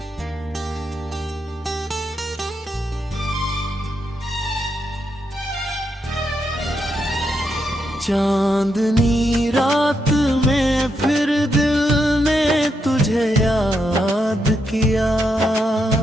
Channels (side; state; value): both; normal; correlation 0.81